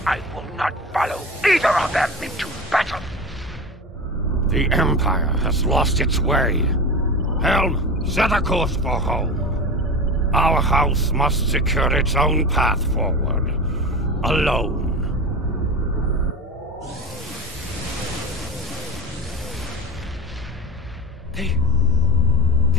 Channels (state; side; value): normal; both; correlation 0.28